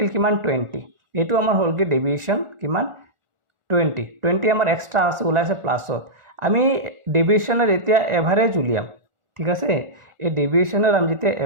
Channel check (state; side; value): late; left; 1.4 ms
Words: কিমান, 20। এইটো আমাৰ হ'লগৈ ডেভিয়েশ্যন কিমান, 20 আমাৰ এক্সট্ৰা আছে, ওলাইছে প্লাছত। আমি ডেভিয়েশ্যনৰ এতিয়া এভাৰেজ উলিয়াম, ঠিক আছে। এই ডেভিয়েশ্যনৰ আমি যেতিয়া